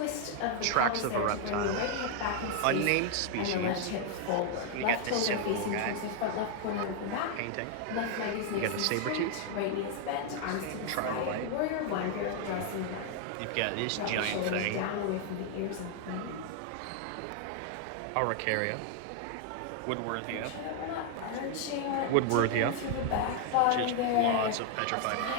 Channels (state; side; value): different; both; correlation 0.00